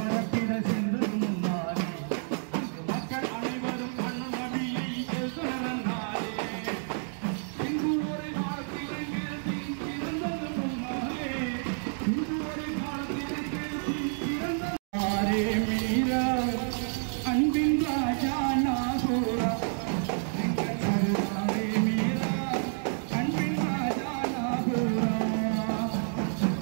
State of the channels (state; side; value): silent; left; 58 dB below the other